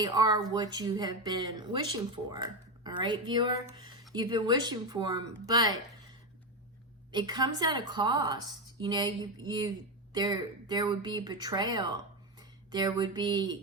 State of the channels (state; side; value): normal; both; correlation 0.12